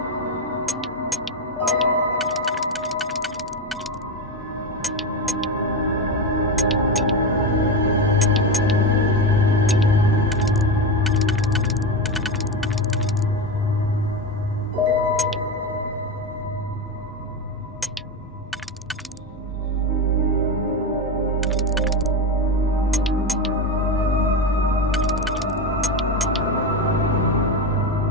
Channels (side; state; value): both; normal; correlation 0.16